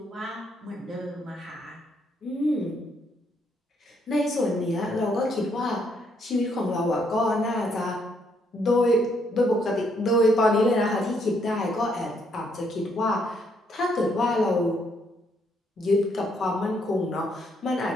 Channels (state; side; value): normal; both; correlation 0.72